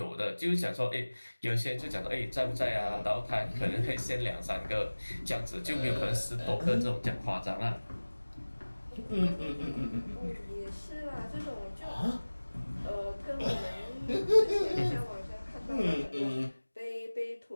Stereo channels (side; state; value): both; inverted; correlation -1.00